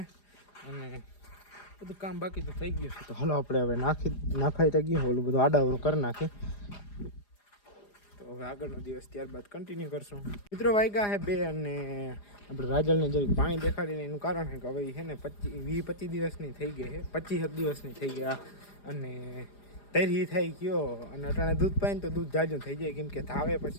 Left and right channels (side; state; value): right; late; 4.9 ms